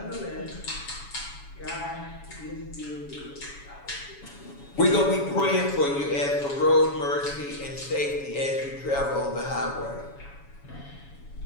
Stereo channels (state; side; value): late; right; 7.1 ms